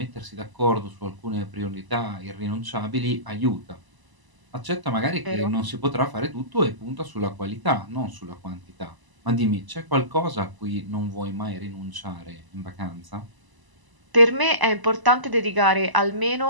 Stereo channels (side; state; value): left; late; 1.0 ms